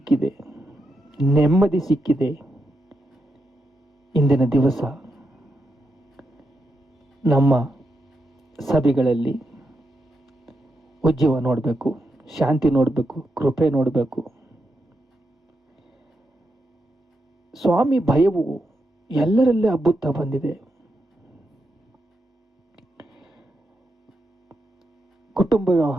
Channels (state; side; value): normal; both; correlation 0.84